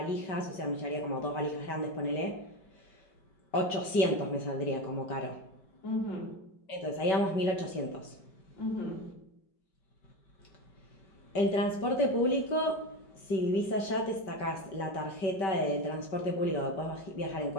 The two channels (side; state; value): right; late; 5.2 ms